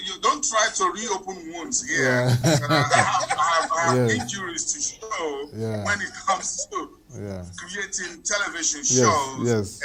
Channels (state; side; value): identical; both; correlation 1.00